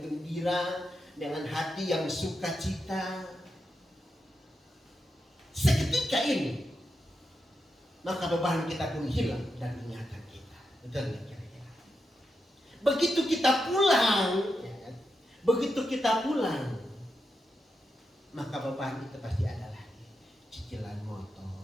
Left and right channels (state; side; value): normal; both; correlation 0.87